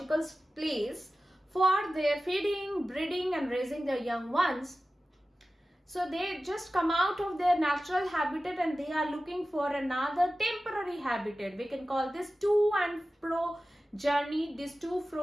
place for their feeding, breeding and raising their young ones. So they just come out of their natural habitat and they are looking for another temporary habitat. We can call this to and fro journey, this to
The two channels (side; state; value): both; normal; correlation 0.95